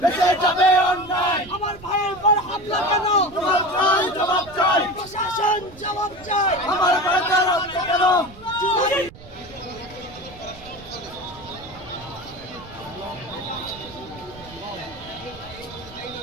আমার ভাইয়ের পর হামলা কেন জবাব চাই প্রশাসন জবাব চাই আমার ভাইয়ের রক্ত কেন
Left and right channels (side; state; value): right; noise; rumble, 20 dB below the sound